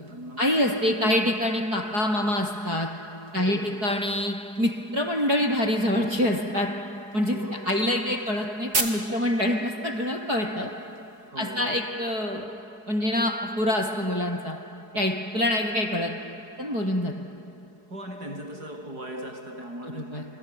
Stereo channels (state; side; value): late; left; 4.8 ms